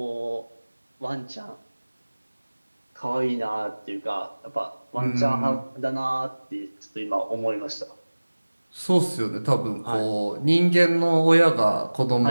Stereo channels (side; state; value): both; inverted; correlation -1.00